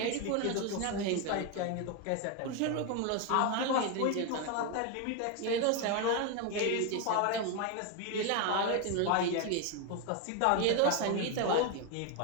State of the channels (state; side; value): different; both; correlation 0.02